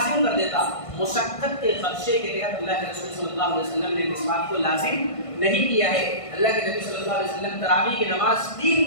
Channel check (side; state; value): right; late; 1.5 ms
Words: کر دیتا. مشقت کے خدشے کے تحت اللہ کے رسول صلی اللہ علیہ وسلم نے مسواک کو لازم نہیں کیا ہے. اللہ کے نبی صلی اللہ علیہ وسلم تراویح کی نماز 3